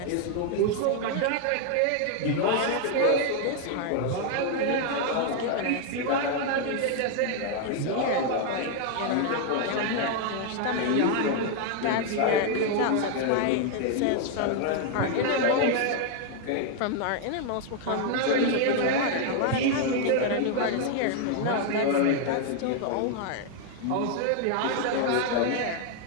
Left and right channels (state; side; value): different; both; correlation 0.00